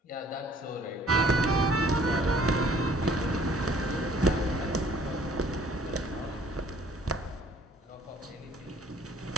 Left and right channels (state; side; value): normal; both; correlation 0.57